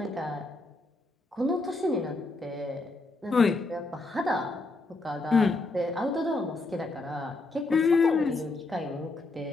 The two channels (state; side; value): quieter; right; 3.2 dB